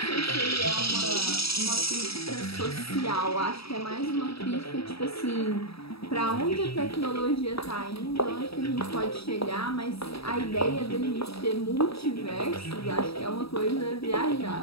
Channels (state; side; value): late; right; 0.77 ms